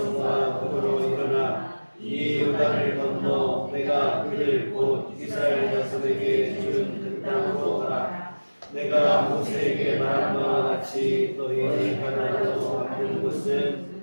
더불어 일어나 이 요단을 건너 내가 그들 곧 이스라엘 자손에게 준 그 땅으로 가라. 내가 모세에게 말한 바와 같이 너희의 가나안으로 가는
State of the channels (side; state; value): both; inverted; correlation -1.00